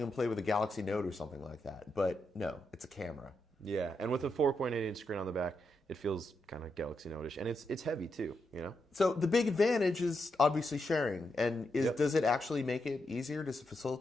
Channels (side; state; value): both; normal; correlation 0.83